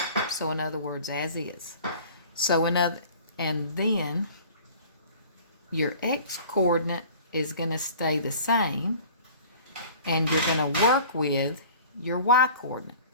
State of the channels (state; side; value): inverted; both; correlation -0.46